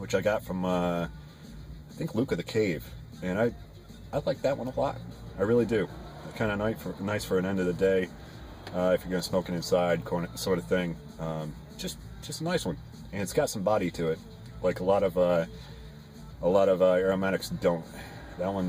I got from, I think, Luke of the Cave. And I like that one a lot. I really do. Kind of nice for an end of the day, if you're going to smoke it inside, sort of thing. Just a nice one. And it's got some body to it, like a lot of aromatics don't. That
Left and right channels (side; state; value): both; identical; correlation 1.00